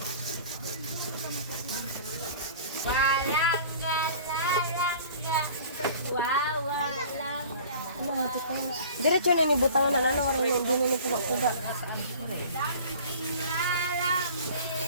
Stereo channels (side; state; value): both; inverted; correlation -0.45